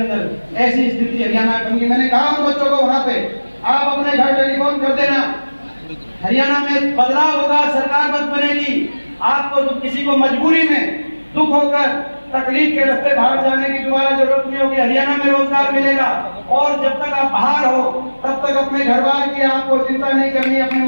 ऐसी स्थिति हरियाणा में। मैंने कहा उन बच्चों को वहां पे आप अपने घर टेलीफोन कर देना, हरियाणा में बदलाव होगा, सरकार बद बनेगी। आपको तो किसी को मजबूरी में दुख होकर तकलीफ के रास्ते बाहर जाने की दोबारा जरूरत नहीं होगी, हरियाणा में रोजगार मिलेगा। और जब तक आप बाहर हो तब तक अपने घर बार की आपको चिंता नहीं करनी। अपने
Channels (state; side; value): inverted; both; correlation -1.00